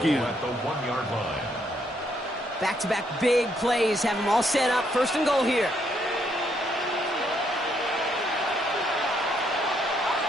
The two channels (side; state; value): both; normal; correlation 0.73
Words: At the 1-yard line. Back-to-back big plays have them all set up. First and goal here.